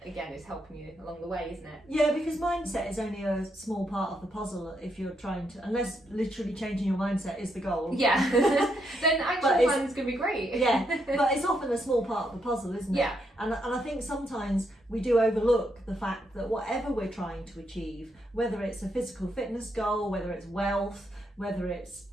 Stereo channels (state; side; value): normal; both; correlation 0.78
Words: again, it's helping you along the way, isn't it? Yeah, because mindset is only a small part of the puzzle if you're trying to, unless literally changing your mindset is the goal. Yeah. Then action plan's gonna be great. Yeah, but it's often a small part of the puzzle, isn't it? Yeah. And I think sometimes we do overlook the fact that whatever we're trying to achieve, whether it's a physical fitness goal, whether it's wealth, whether it's